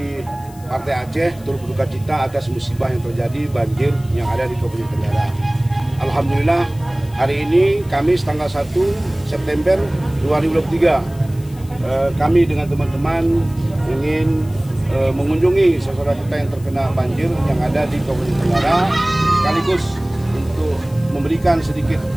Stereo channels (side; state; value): left; noise; hiss, 24 dB below the sound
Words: Partai Aceh turut berduka cita atas musibah yang terjadi banjir yang ada di Kabupaten Tenggara. Alhamdulillah hari ini Kamis tanggal 1 September 2023 kami dengan teman-teman ingin mengunjungi saudara kita yang terkena banjir yang ada di Kabupaten Tenggara, sekaligus untuk memberikan sedikit